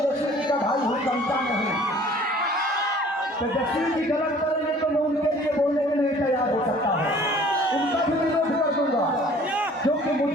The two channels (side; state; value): both; normal; correlation 0.52